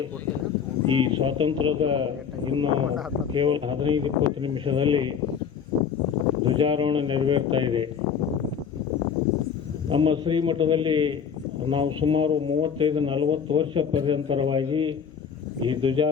ಈ ಸ್ವಾತಂತ್ರ್ಯದ ಇನ್ನು ಕೇವಲ 15-20 ನಿಮಿಷದಲ್ಲಿ ಧ್ವಜಾರೋಹಣ ನೆರವೇರ್ತಾ ಇದೆ. ನಮ್ಮ ಶ್ರೀಮಠದಲ್ಲಿ ನಾವು ಸುಮಾರು 35-40 ವರ್ಷ ಪರ್ಯಂತರವಾಗಿ ಈ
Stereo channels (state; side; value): quieter; right; 7.2 dB